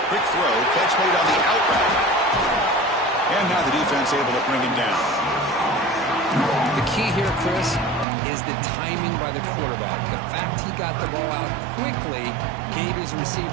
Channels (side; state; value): left; drops out; at 8.1 s